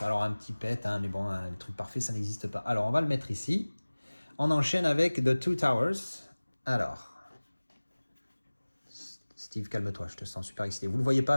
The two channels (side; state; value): both; inverted; correlation -1.00